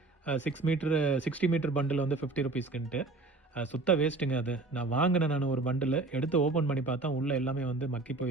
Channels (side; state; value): left; quieter; 3.4 dB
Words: 60 மீட்டர் பண்டில் வந்து 50 rupeesக்குன்ட்டு சுத்த வேஸ்ட்டுங்க. அது நான் வாங்கினேன். நான் ஒரு பண்டில் எடுத்து ஓப்பன் பண்ணி பார்த்தா உள்ளே எல்லாமே வந்து மக்கி